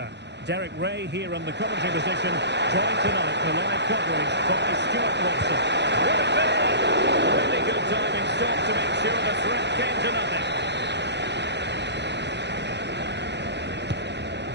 Derek Ray here in the commentary position, joined tonight for live coverage by Stuart Watson. Will it be? Really good timing stop to make sure the threat came to nothing.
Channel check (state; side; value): late; left; 0.50 ms